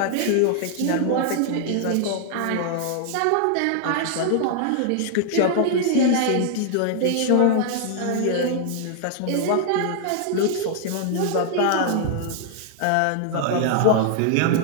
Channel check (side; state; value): both; different; correlation 0.00